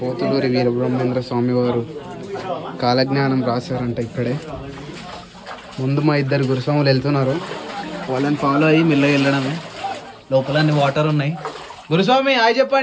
పోతులూరి వీరబ్రహ్మేంద్ర స్వామి వారు కాలజ్ఞానం రాశారంట. ఇక్కడే ముందు మా ఇద్దరు గురుస్వాములు వెళ్తున్నారు, వాళ్ళని ఫాలో అయ్యి మెల్లగా వెళ్ళడమే. లోపల అన్ని వాటర్ ఉన్నాయి. గురుస్వామి హాయ్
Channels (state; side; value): identical; both; correlation 1.00